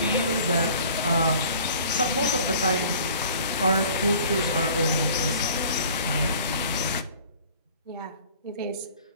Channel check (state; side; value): inverted; both; correlation -0.49